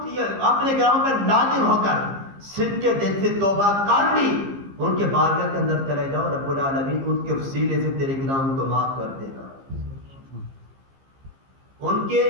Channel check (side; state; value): left; late; 15 ms